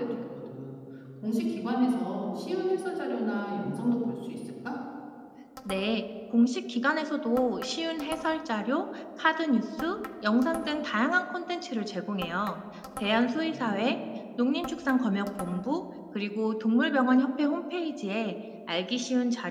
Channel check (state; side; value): identical; both; correlation 1.00